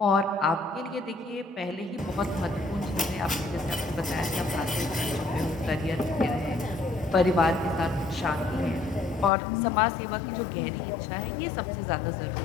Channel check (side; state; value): right; drops out; at 9.3 s